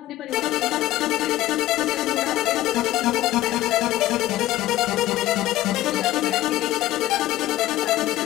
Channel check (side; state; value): right; quieter; 15.4 dB